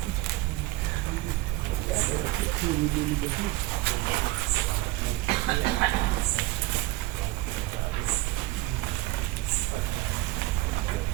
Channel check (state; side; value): quieter; left; 19.5 dB